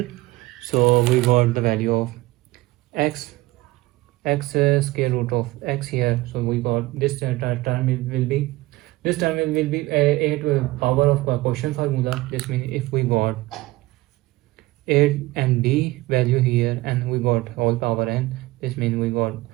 so we got the value of x square root of x here, so we got this term will be a to the power of quotient formula. This means if we got a and b value here and we got whole power n, this means we got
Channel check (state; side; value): quieter; left; 19.5 dB